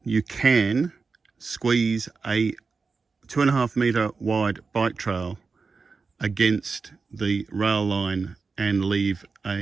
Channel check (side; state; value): left; quieter; 4.6 dB